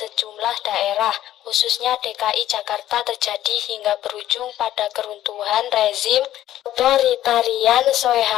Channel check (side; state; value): right; quieter; 13.0 dB